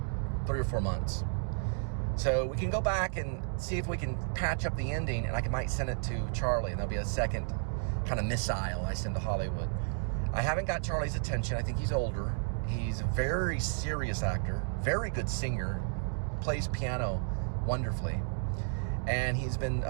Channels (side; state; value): left; silent; digital silence